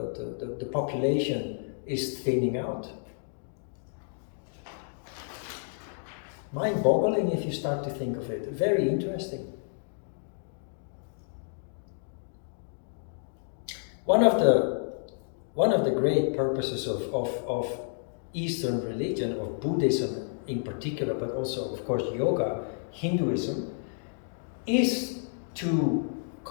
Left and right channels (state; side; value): silent; right; digital silence